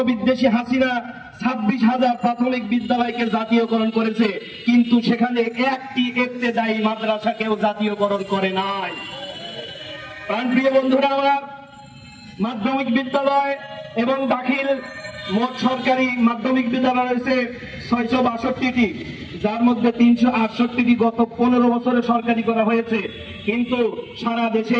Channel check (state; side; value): identical; both; correlation 1.00